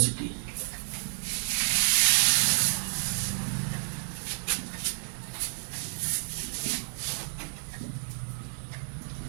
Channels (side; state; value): left; silent; digital silence